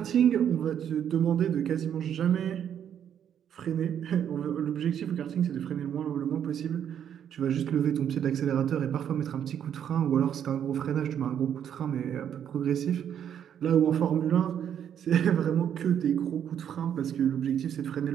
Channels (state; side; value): quieter; left; 9.2 dB